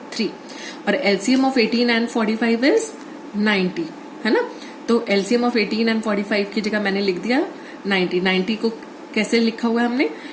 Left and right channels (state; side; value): identical; both; correlation 1.00